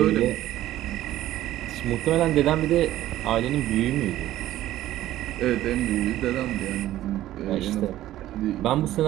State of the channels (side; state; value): left; quieter; 14.0 dB